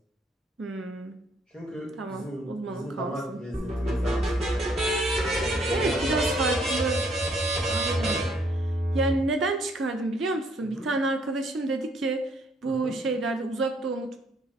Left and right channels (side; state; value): both; normal; correlation 0.66